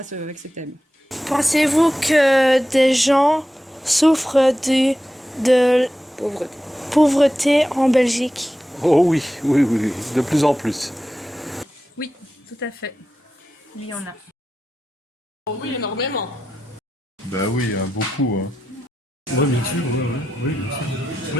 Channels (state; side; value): normal; both; correlation 0.91